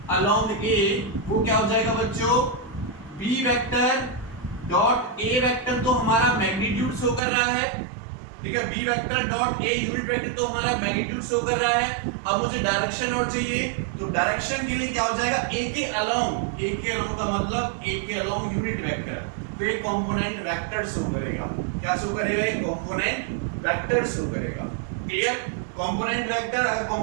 अलोंग a, वो क्या हो जाएगा बच्चों, b vector dot a vector, तो हमारा मैग्नीट्यूड शो कर रहा है, ठीक है, b vector dot a unit vector तो हमारा मैग्नीट्यूड शो कर रहा है। अब मुझे डायरेक्शन और चाहिए, तो डायरेक्शन के लिए क्या हो जाएगा, a के अलोंग, a के अलोंग का मतलब a के अलोंग यूनिट वेक्टर, तो ये कंपोनेंट वेक्टर शो करेगा। क्या शो करेगा, ये कंपोनेंट वेक्टर शो करेगा। क्लियर, कंपोनेंट वेक्टर, अगर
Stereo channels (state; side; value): drops out; left; at 7.2 s